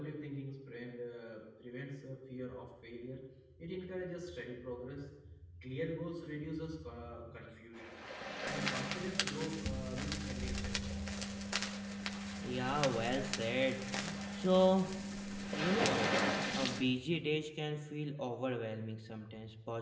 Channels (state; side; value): identical; both; correlation 1.00